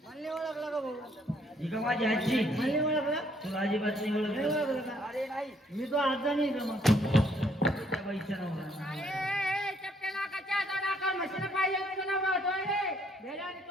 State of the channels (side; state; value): both; normal; correlation 0.67